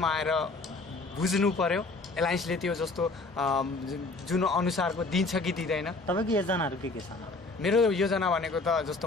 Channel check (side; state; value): right; quieter; 3.5 dB